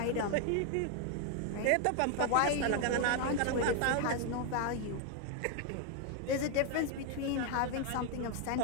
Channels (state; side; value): different; both; correlation 0.01